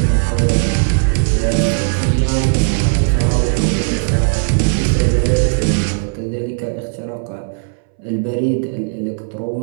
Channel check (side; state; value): left; silent; 66 dB below the other